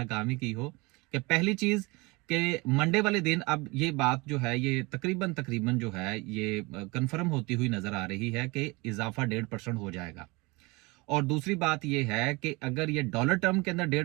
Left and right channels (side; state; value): left; quieter; 25.1 dB